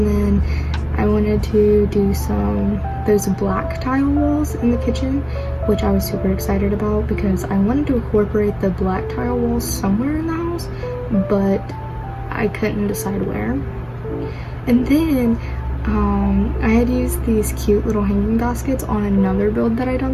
then I wanted to do those black tile walls in the kitchen, which I was super excited about because I wanted to incorporate the black tile walls somewhere in the house, but I couldn't decide where. And then I had used these cute little hanging baskets on another build that I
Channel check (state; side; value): identical; both; correlation 1.00